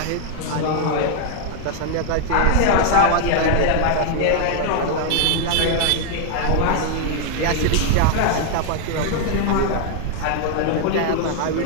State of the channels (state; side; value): different; both; correlation 0.00